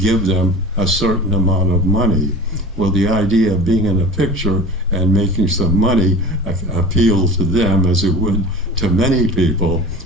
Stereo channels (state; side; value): normal; both; correlation 0.37